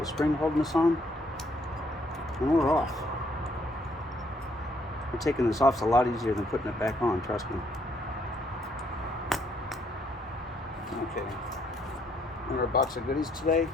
spring holding us on, and we're off. Taking this off is a lot easier than putting it back on, trust me. Okay, another box of goodies today.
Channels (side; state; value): both; normal; correlation 0.69